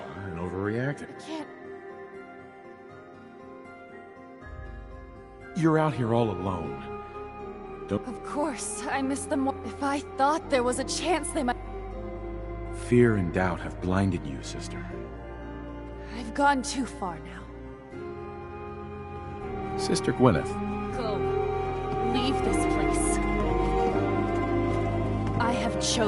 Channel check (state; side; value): identical; both; correlation 1.00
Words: and overreacted? I can't... You're out here all alone. Of course, I missed them. If I thought there was a chance they might... Fear and doubt have blinded you, sister. I've gone too far now. Sister Gwyneth. Go. Leave this place. I have